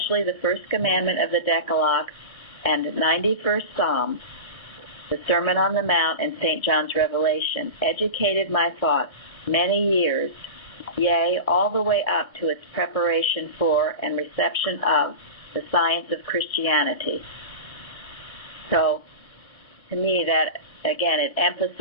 the first commandment of the Decalogue and 91st Psalm, the Sermon on the Mount, and St. John's Revelation, educated my thoughts many years, yea, all the way up to its preparation for and reception of the science of Christianity. So, to me, that, again, it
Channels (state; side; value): late; right; 1.7 ms